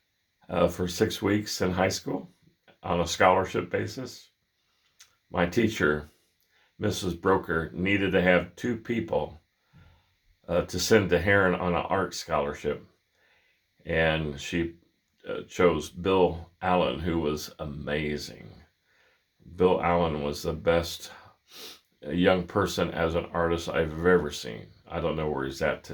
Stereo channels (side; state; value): both; identical; correlation 1.00